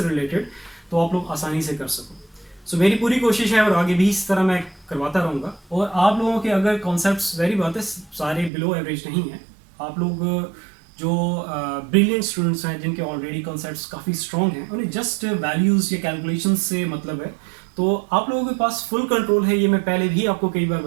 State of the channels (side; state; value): left; drops out; at 8.5 s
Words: रिलेटेड, तो आप लोग आसानी से कर सको। सो मेरी पूरी कोशिश है और आगे भी इस तरह मैं करवाता रहूँगा। और आप लोगों के अगर कॉन्सेप्ट्स, वेरी बात है, सारे बिलो एवरेज नहीं हैं, आप लोग जो ब्रिलियंट स्टूडेंट्स हैं जिनके ऑलरेडी कॉन्सेप्ट्स काफ़ी स्ट्रॉन्ग हैं, उन्हें जस्ट वैल्यूज़ या कैलकुलेशन से मतलब है, तो आप लोगों के पास फुल कंट्रोल है। ये मैं पहले भी आपको कई बार